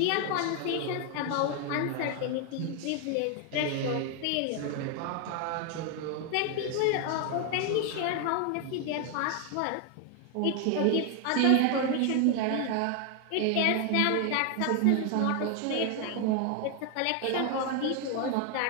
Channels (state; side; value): different; both; correlation 0.01